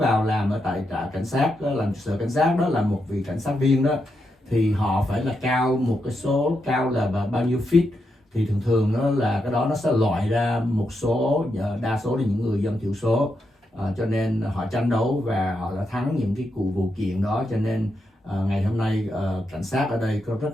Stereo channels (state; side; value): normal; both; correlation 0.83